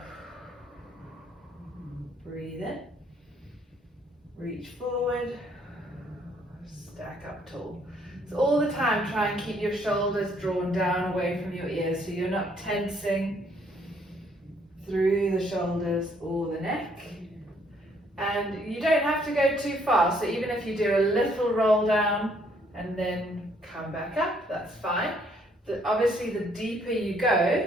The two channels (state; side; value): normal; both; correlation 0.67